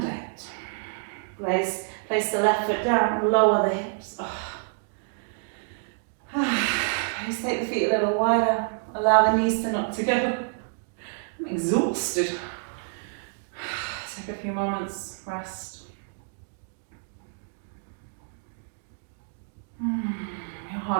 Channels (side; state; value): left; silent; digital silence